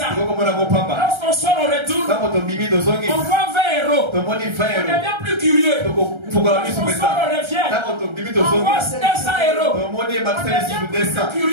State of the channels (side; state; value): left; late; 1.3 ms